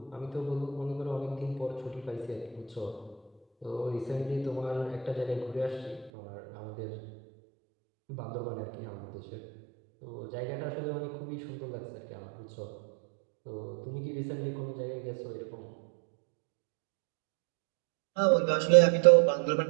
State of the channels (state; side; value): drops out; left; at 6.1 s